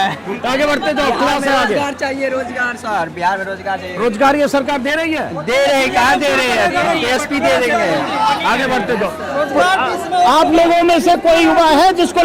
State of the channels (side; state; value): both; identical; correlation 1.00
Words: आगे बढ़ते जाओ, क्लास से आगे। रोजगार चाहिए, रोजगार सर, बिहार में रोजगार चाहिए। रोजगार ये सरकार दे रही है? दे रही, कहाँ दे रही है? टीएसपी दे रही है। आगे बढ़ते जाओ। आप लोगों में से कोई युवा है जिसको